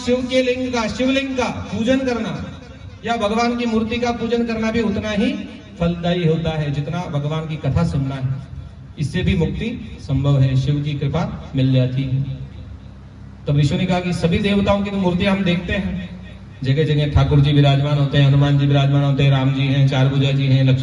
के लिंग का, शिवलिंग का पूजन करना या भगवान की मूर्ति का पूजन करना भी उतना ही फलदायी होता है जितना भगवान की कथा सुनना है। इससे भी मुक्ति संभव है, शिव की कृपा मिल जाती है। तब ऋषि ने कहा कि सभी देवताओं की तो मूर्तियां हम देखते हैं, जगह जगह ठाकुर जी विराजमान होते हैं, हनुमान जी विराजमान होते हैं, राम जी हैं, 4 भुजा जी हैं,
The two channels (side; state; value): both; identical; correlation 1.00